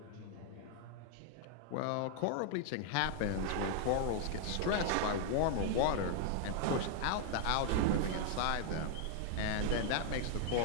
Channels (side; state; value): both; different; correlation 0.00